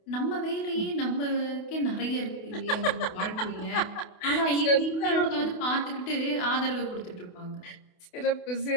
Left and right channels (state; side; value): late; right; 28 ms